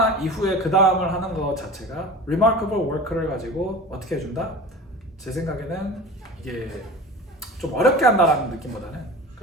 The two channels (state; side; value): normal; both; correlation 0.35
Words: 이후에 그 다음을 하는 것 자체가 remarkable work를 가지고 어떻게 해준다? 제 생각에는 이게 좀 어렵게 한다라는 느낌보다는